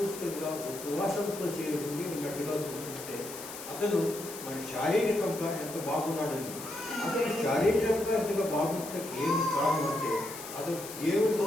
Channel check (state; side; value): noise; left; hiss, 11 dB below the sound